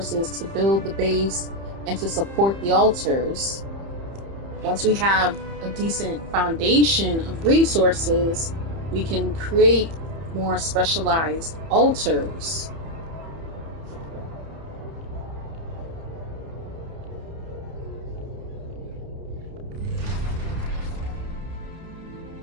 to build the base and to support the altars. Once we have a decent foundation of resources, we can create more specialized altars.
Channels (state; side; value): late; left; 30 ms